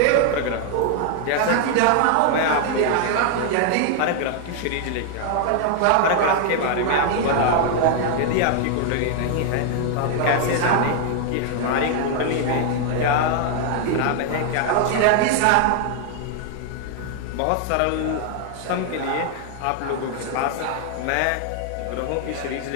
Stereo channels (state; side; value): different; both; correlation 0.00